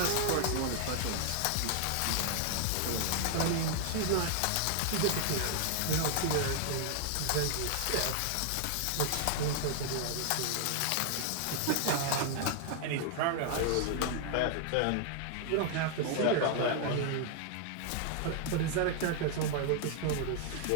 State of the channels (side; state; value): both; different; correlation 0.00